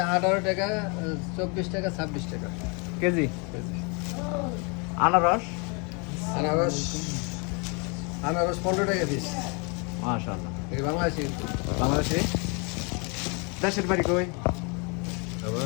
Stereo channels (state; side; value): quieter; right; 33.0 dB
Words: 18 টাকা, 24 টাকা, 26 টাকা কেজি? কেজি। আনারস? আনারস 15 টাকা পিস। মাশাআল্লাহ। এই বাংলাদেশি বাংলাদেশে? দেশের বাড়ি কই?